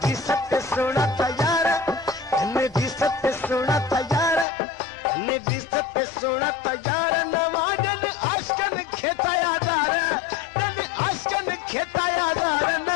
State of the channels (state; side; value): drops out; right; at 4.5 s